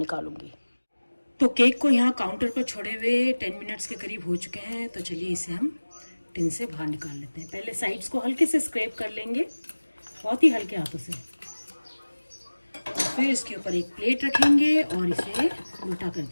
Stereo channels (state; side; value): inverted; both; correlation -1.00